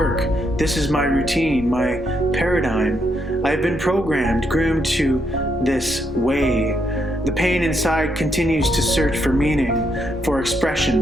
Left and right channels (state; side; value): normal; both; correlation 0.77